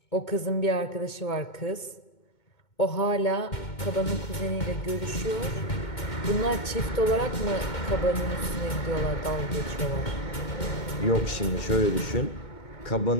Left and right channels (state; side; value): late; right; 2.2 ms